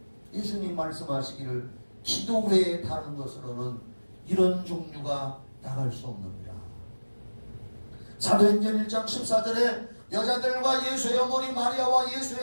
예수님 말씀하시기를 기도 외에 다른 것으로는 이런 종류가 나갈 수 없느니라. 사도행전 1장 14절에 여자들과 예수의 어머니 마리아와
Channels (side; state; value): both; inverted; correlation -1.00